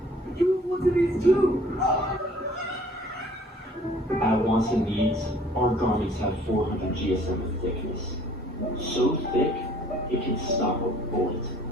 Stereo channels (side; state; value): both; normal; correlation 0.55